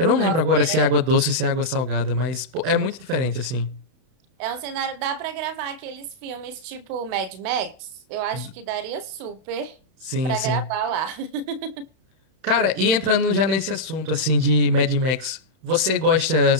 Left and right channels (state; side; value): late; left; 32 ms